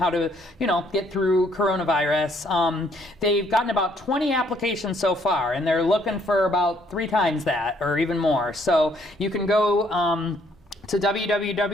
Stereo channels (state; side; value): normal; both; correlation 0.66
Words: to, get through coronavirus. They've gotten about 20 applications so far, and they're looking for about 3 times that or even more. So you can go to